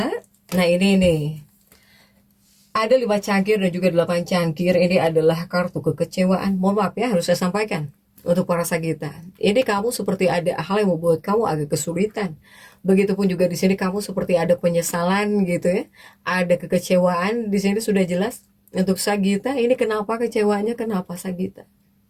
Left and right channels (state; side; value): identical; both; correlation 1.00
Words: nah ini nih, ada 5 cangkir dan juga 8 cangkir, ini adalah kartu kekecewaan. Mohon maaf ya, harus saya sampaikan untuk para Sagitta. Ini kamu seperti ada hal yang membuat kamu agak kesulitan. Begitupun juga di sini kamu seperti ada penyesalan gitu ya, ada kekecewaan. Di sini sudah jelas untuk Sagitta. Ini kenapa kecewanya? Kenapa Sagitta?